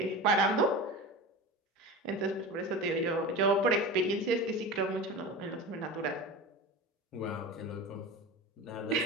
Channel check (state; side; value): normal; both; correlation 0.29